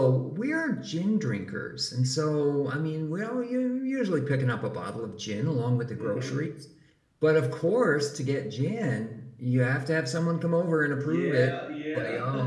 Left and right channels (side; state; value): both; identical; correlation 1.00